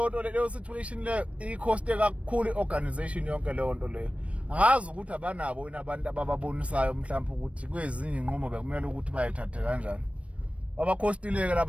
situation leyo ikhoste kakhulu iorganization yonke leyo nto leyo. Angazi ukuthi abanabo abantu abababonisayo mhlawumbe ukuthi kwezinye inqumo bekumele ukuthi bayithathe kanjani. Abakhostileke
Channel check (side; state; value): left; late; 0.063 ms